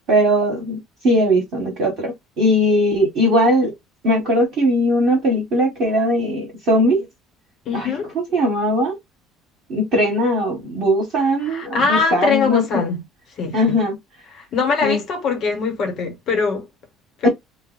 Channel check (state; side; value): normal; both; correlation 0.40